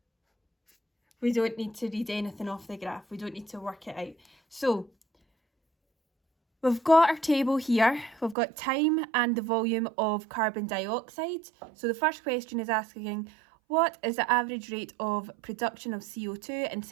we don't need to read anything off the graph. We don't need to work it out. So we've got our table here. We've got time and the volume of carbon dioxide. So the first question is asking, what is the average rate of production of CO2 in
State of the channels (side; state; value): left; drops out; at 8.3 s